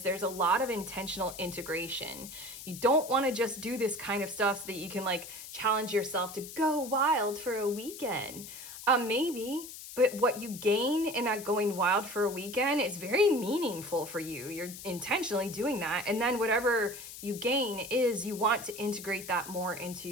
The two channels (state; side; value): noise; left; hiss, 12 dB below the sound